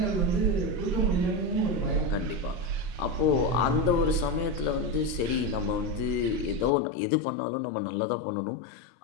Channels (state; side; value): drops out; right; at 6.7 s